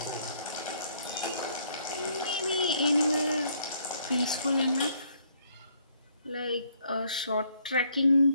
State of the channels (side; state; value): both; inverted; correlation -0.67